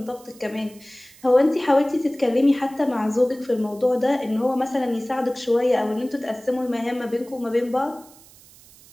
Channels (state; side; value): noise; right; hiss, 24 dB below the sound